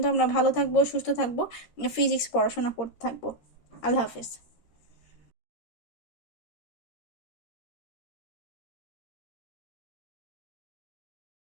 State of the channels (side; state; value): right; late; 13 ms